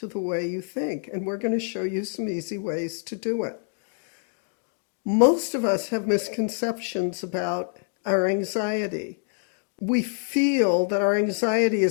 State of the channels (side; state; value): right; silent; 61 dB below the other